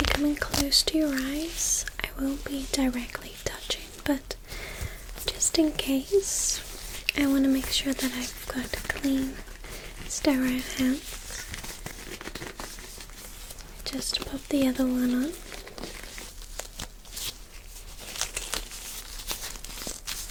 coming close to your eyes, I won't be directly touching, but just in case, I want to make sure that I've got clean, sterile hands. Just pop the other one on.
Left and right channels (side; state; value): both; identical; correlation 1.00